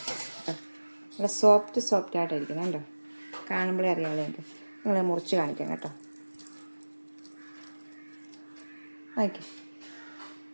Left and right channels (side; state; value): both; inverted; correlation -1.00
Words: ഇവിടെ സോഫ്റ്റ് ആയിട്ടിരിക്കണം കേട്ടോ, കാണുമ്പോഴേ അറിയാമല്ലോ എനിക്ക്. നിങ്ങളെ മുറിച്ച് കാണിക്കാം കേട്ടോ. ഓക്കെ,